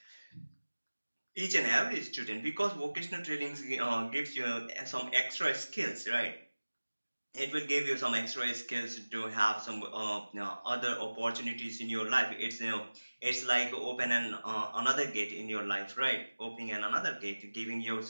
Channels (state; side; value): inverted; both; correlation -1.00